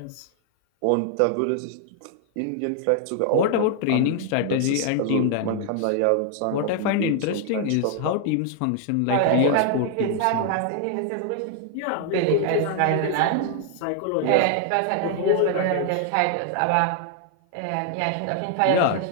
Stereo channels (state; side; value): different; both; correlation 0.00